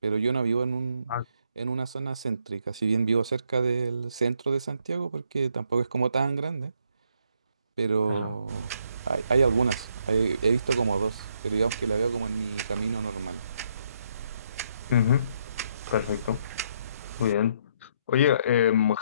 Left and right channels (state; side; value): inverted; both; correlation -0.72